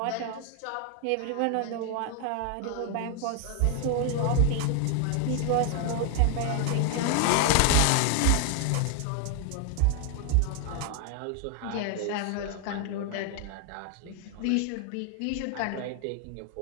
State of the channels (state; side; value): different; both; correlation 0.00